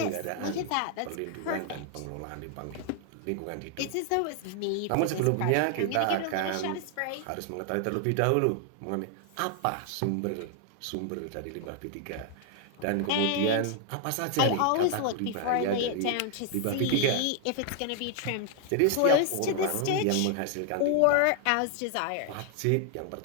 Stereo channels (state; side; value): different; both; correlation 0.00